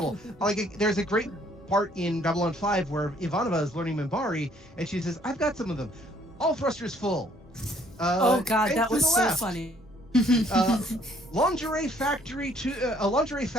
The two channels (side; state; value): both; normal; correlation 0.63